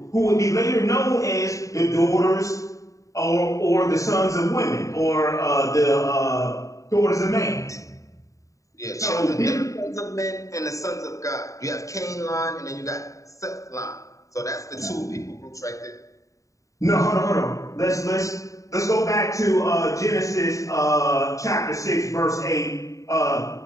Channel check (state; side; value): late; right; 0.16 ms